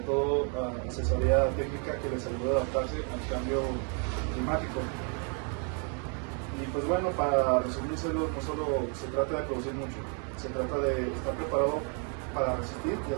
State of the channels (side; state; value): left; quieter; 38.8 dB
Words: todo asesoría técnica que les ayude a adaptarse al cambio climático. Y pues bueno, para resumírselo, no solo se trata de producir mucho, se trata de estar preparado para resistir y